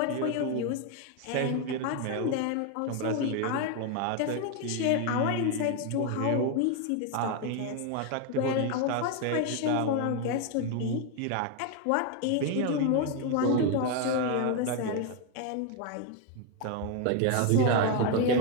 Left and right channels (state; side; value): different; both; correlation 0.01